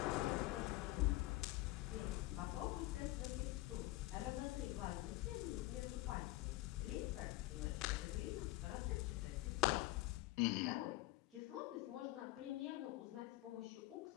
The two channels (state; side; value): quieter; right; 18.4 dB